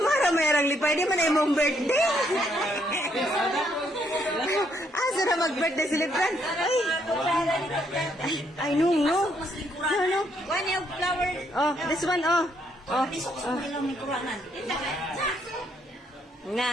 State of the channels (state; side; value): normal; both; correlation 0.72